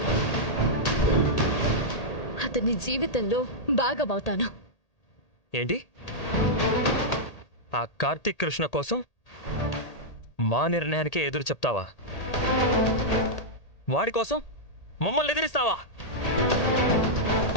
అతని జీవితంలో భాగమవుతాను. ఏంటి? ఆ కార్తీక్ కృష్ణ కోసం మా నిర్ణయానికే ఎదురు చెప్తావా? వాడి కోసం మమ్మల్ని ఎదిరిస్తావా?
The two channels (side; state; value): right; late; 1.8 ms